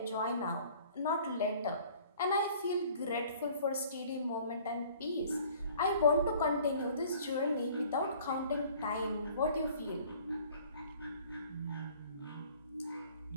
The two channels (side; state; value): both; inverted; correlation -0.52